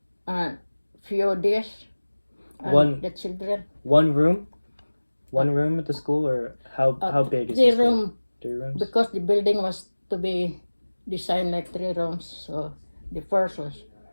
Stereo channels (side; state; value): both; inverted; correlation -1.00